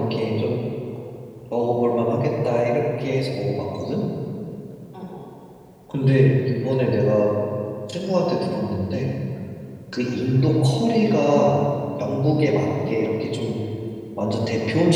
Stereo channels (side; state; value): both; identical; correlation 1.00